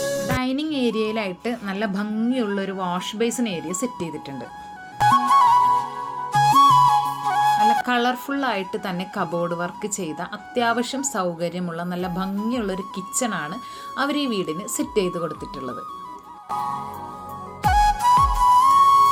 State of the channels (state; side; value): identical; both; correlation 1.00